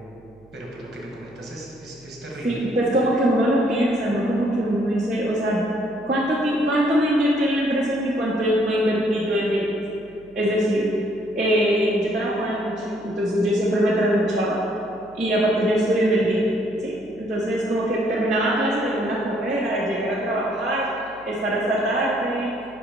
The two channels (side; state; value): right; noise; hum, 27 dB below the sound